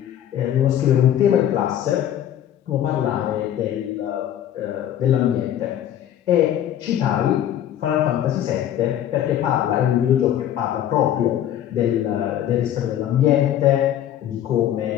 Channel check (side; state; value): right; quieter; 11.0 dB